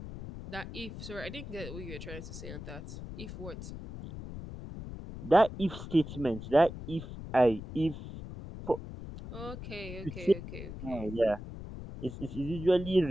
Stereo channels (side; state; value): left; noise; rumble, 10 dB below the sound